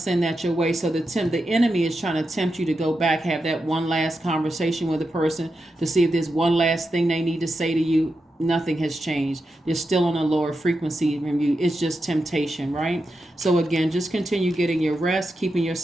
that your way. So the enemy is trying to tempt you to go back, have that one last conversation with a person to see if there's one last thing they need to say to you. Nothing has changed. They're still on a lower frequency from you. It's just temptation, right? So again, just continue getting your rest, keeping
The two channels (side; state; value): both; normal; correlation 0.88